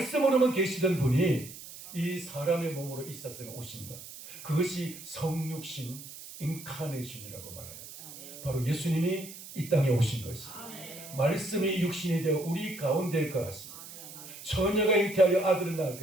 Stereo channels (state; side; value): noise; right; hiss, 14 dB below the sound